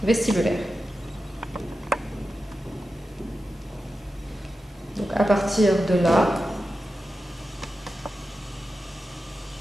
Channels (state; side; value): normal; both; correlation 0.91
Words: vestibulaire. Donc à partir de là,